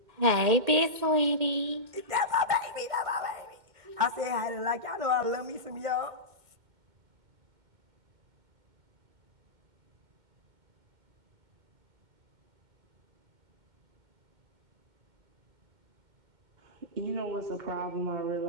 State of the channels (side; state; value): left; late; 2.1 ms